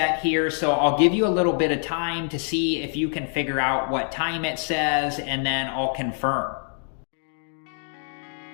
here, so I'll give you a little bit of time to see if you can figure out what time it says, and then I'll confirm.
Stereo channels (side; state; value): right; silent; 57 dB below the other